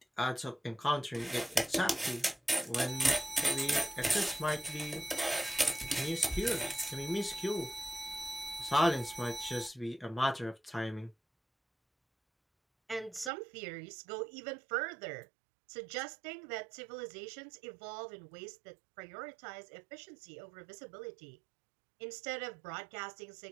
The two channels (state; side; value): drops out; left; at 13.3 s